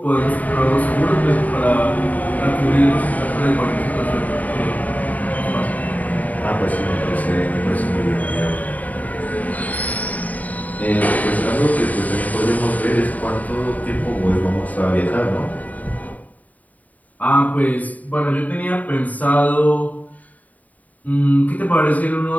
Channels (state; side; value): late; right; 0.074 ms